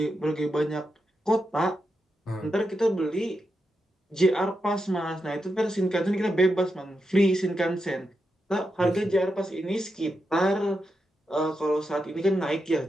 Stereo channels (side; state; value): both; normal; correlation 0.86